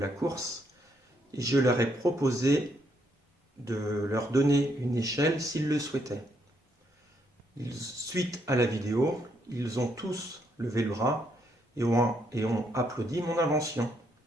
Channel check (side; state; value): both; normal; correlation 0.74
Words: course et je leur ai proposé de leur donner une échelle s'ils le souhaitaient. Suite à la vidéo, ils ont tous levé le bras et ont applaudi mon invention.